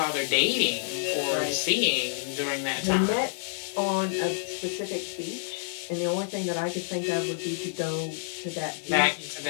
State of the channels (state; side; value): silent; right; digital silence